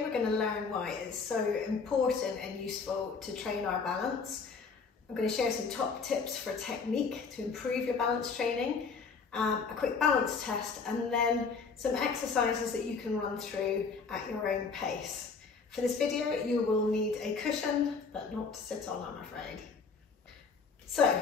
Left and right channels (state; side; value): quieter; right; 5.0 dB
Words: we're going to learn why it is so important and useful to train our balance. I'm going to share some top tips for technique to improve your balance training, a quick balance test, and then some exercises that you can run through at your own pace. For this video you will need a cushion, but not to sit on, I'm afraid. So,